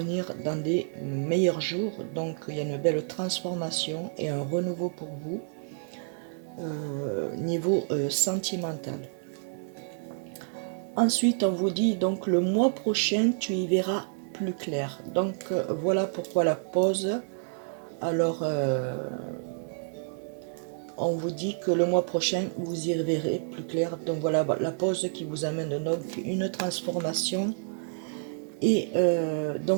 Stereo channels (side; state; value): left; silent; 59 dB below the other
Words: dans des meilleurs jours. Donc il y a une belle transformation et un renouveau pour vous niveau sentimental. Ensuite, on vous dit donc le mois prochain, tu y verras plus clair. Donc voilà pourquoi la pause. Alors, on vous dit que le mois prochain, vous y verrez plus clair. Donc voilà la pause qui vous amène donc une transformation. Et